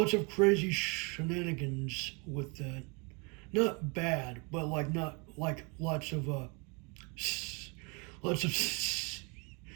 of crazy shenanigans with that. Not bad, but like not like lots of lots of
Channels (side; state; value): left; quieter; 31.6 dB